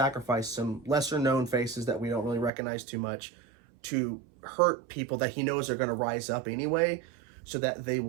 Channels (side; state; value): left; drops out; at 2.5 s